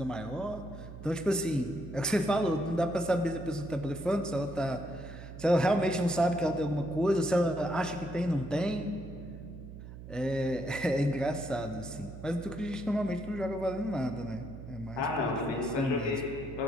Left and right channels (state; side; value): noise; right; hum, 13 dB below the sound